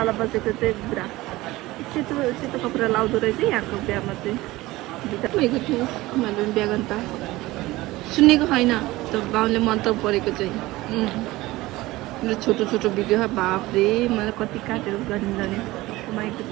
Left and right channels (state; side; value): quieter; left; 18.9 dB